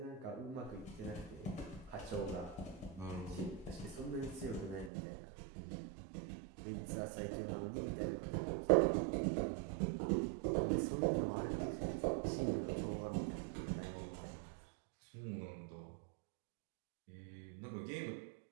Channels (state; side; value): drops out; left; at 4.9 s